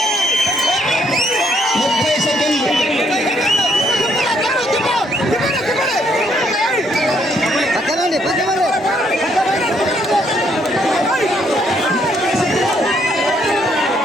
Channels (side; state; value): both; normal; correlation 0.70